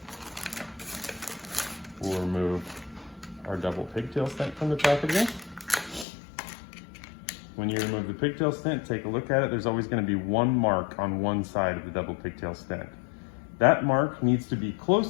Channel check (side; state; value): right; drops out; at 6.1 s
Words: We'll remove our double pigtail stent from the packaging. When you remove the pigtail stent, take a look at it. There's always going to be one mark on one side of the double pigtail stent. That mark needs to be